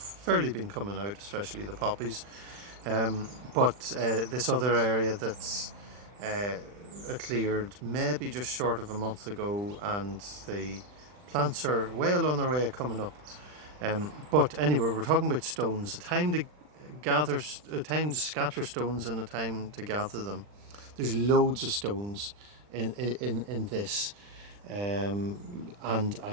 been coming out, especially the poppies. But this other area that's cleared maybe just short of a month ago, and the plants are well on their way of coming up. But anyway, we're talking about stones. A time to scatter stones, and a time to gather them. There's loads of stones in this, and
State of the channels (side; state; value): left; late; 40 ms